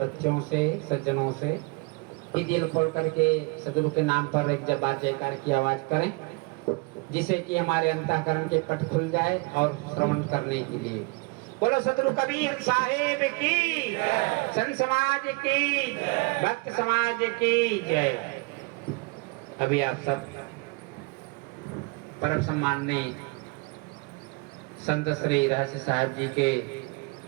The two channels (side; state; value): left; quieter; 27.8 dB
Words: से, सज्जनों से कि दिल खोल करके सदगुरु के नाम पर एक जब बार जयकार की आवाज करें, जिससे कि हमारे अंतःकरण के पट खुल जाए और श्रवण करने के लिए। बोलो सदगुरु कबीर साहेब की, संत समाज की, भक्त समाज की जय। अभी आप सब परम सम्माननीय संत श्री रहस्य साहब जी के